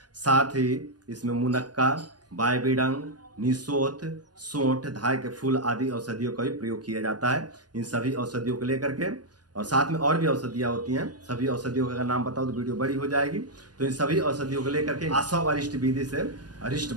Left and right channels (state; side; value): late; left; 0.69 ms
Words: साथ ही इसमें मुनक्का, बायबीडंग, निसोथ, सोंठ, धाय के फूल आदि औषधियों का भी प्रयोग किया जाता है। इन सभी औषधियों को लेकर के और साथ में और भी औषधियाँ होती हैं। सभी औषधियों का अगर नाम बताओ तो वीडियो बड़ी हो जाएगी। तो इन सभी औषधियों को लेकर के आसव अरिष्ट विधि से अरिष्ट